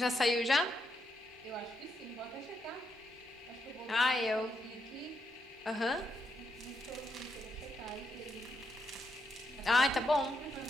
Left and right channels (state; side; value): normal; both; correlation 0.80